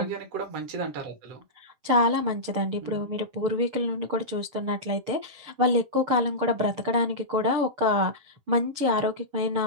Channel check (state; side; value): late; left; 6.8 ms